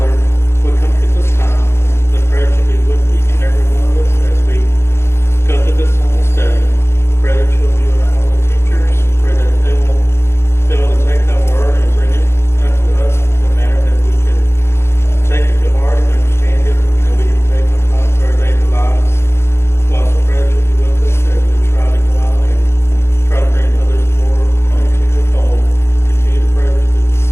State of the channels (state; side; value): late; right; 0.12 ms